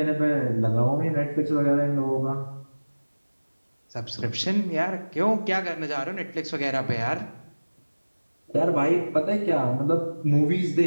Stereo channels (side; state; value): both; inverted; correlation -1.00